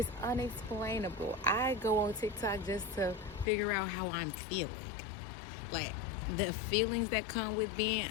unexplainable. I go on TikTok just to figure out how I'm feeling. Like, the feelings that come with being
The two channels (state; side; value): drops out; right; at 3.5 s